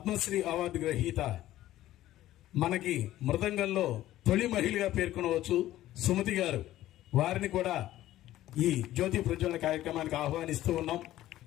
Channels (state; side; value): quieter; right; 14.4 dB